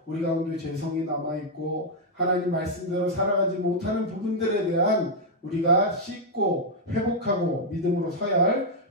우리 가운데 죄성이 남아있고 하나님 말씀대로 살아가지 못하는 부분들에 대한 우리가 씻고 회복하고 믿음으로 서야 할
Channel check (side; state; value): both; normal; correlation -0.02